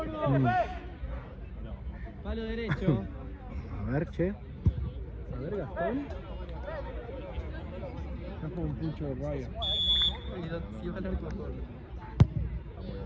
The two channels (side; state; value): both; identical; correlation 1.00